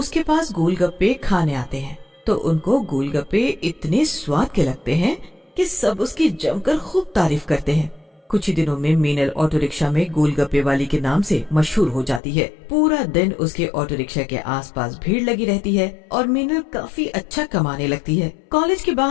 पास गोलगप्पे खाने आते हैं तो उनको गोलगप्पे इतने स्वाद के लगते हैं कि सब उसकी जमकर खूब तारीफ करते हैं। कुछ ही दिनों में मीनल ऑटो रिक्शा में गोलगप्पे वाली के नाम से मशहूर हो जाती है। पूरा दिन उसके ऑटो रिक्शा के आसपास भीड़ लगी रहती है और मीनल काफी अच्छा कमाने लगती है। कॉलेज के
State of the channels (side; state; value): right; drops out; at 12.2 s